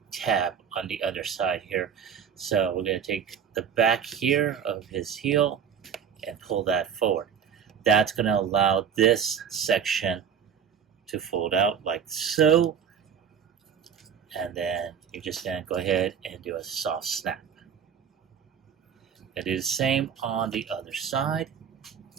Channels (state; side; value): quieter; left; 7.6 dB